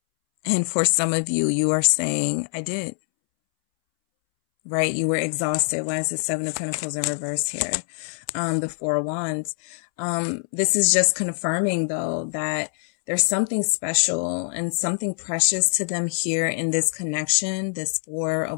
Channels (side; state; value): right; silent; 63 dB below the other